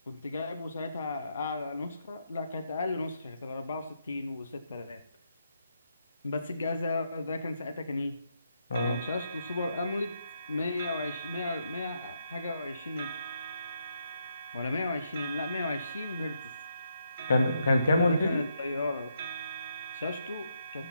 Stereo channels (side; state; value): both; inverted; correlation -0.79